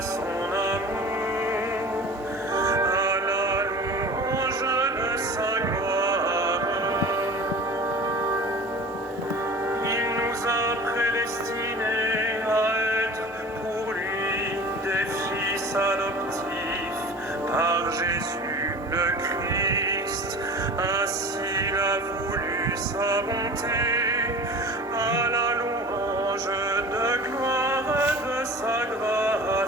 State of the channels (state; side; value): normal; both; correlation 0.38